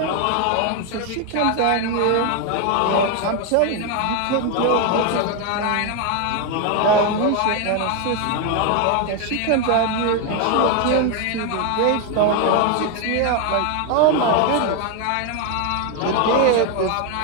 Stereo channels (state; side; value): different; both; correlation 0.01